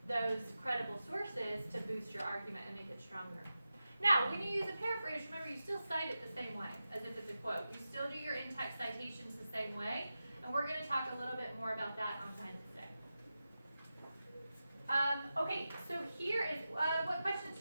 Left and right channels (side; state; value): both; inverted; correlation -0.92